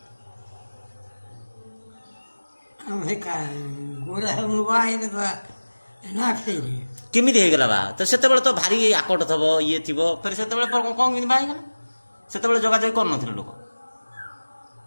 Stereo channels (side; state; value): both; inverted; correlation -1.00